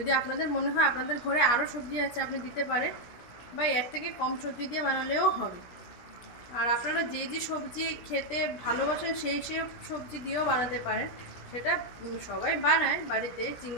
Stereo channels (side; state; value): right; late; 17 ms